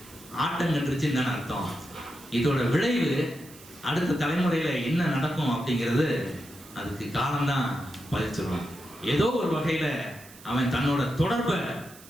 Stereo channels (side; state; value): right; noise; hiss, 20 dB below the sound